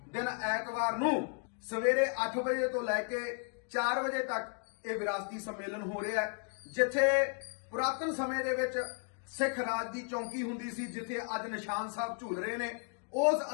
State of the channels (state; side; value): quieter; right; 39.2 dB